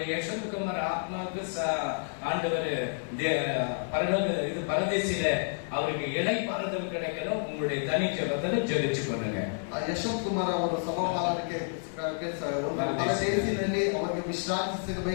யசோத்குமார் ஆத்மாவுக்கு ஆண்டவர் பரதேசில அவருக்கு இலை பாறுதல் கிடைக்கணும். உங்களுடைய தனி ஜெபத்துல ஜெபிச்சு கொள்ளுங்க. ಯಶವಂತ್ ಕುಮಾರ್ ಅವರ ಸಭಾಪಾಲನಕ್ಕೆ ಪರದೇಶಿನಲ್ಲಿ ಅವರಿಗೆ ವಿಶ್ರಾಂತಿ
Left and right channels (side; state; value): right; silent; digital silence